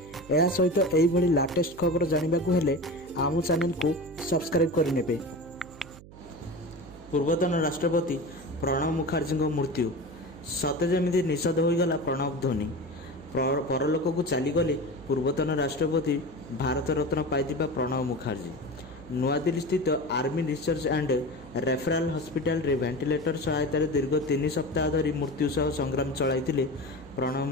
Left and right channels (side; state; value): right; noise; hum, 19 dB below the sound